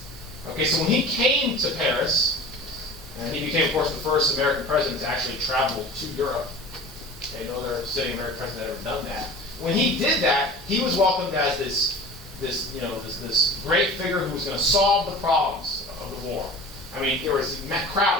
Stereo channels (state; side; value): normal; both; correlation 0.38